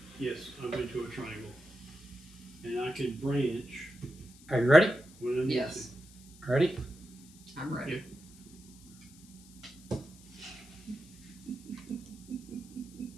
Yes, I went to a triangle. And I can branch Are you ready? when I need Yes, Ready? I'm ready. to.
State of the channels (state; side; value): noise; left; hiss, 22 dB below the sound